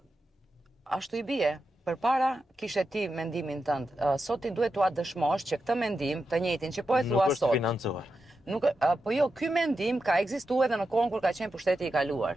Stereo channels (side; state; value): both; normal; correlation 0.88